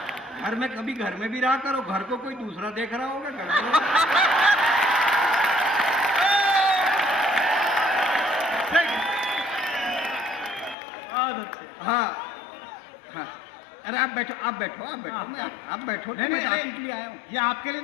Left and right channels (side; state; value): right; drops out; at 10.8 s